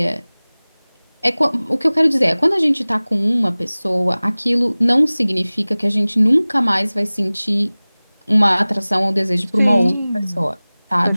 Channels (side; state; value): both; inverted; correlation -0.99